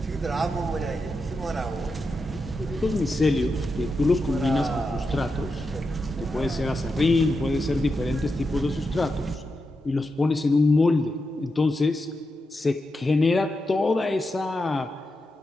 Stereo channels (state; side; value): normal; both; correlation 0.88